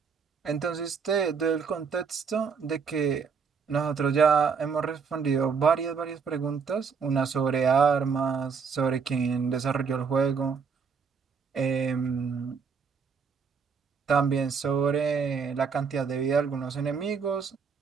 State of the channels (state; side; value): quieter; left; 5.8 dB